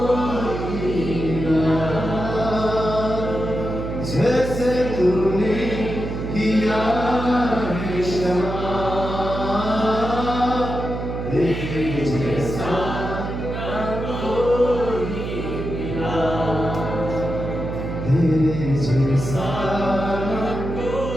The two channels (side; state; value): right; noise; hum, 5 dB below the sound